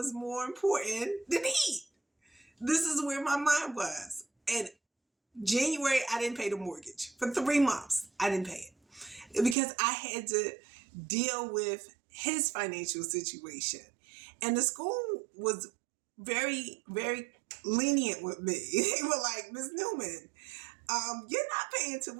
more important than heat. This is where my mind was. And January, I didn't pay the mortgage. For 3 months, I didn't pay it. Because I had to deal with his financial situation. And the school was very, very lenient with me. They were like, Ms. Newman, you're not paying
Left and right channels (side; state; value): left; drops out; at 9.6 s